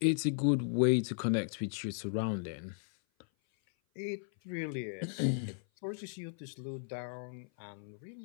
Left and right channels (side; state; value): right; silent; 54 dB below the other